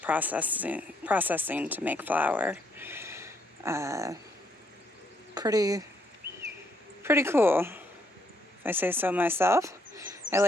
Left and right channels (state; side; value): normal; both; correlation 0.72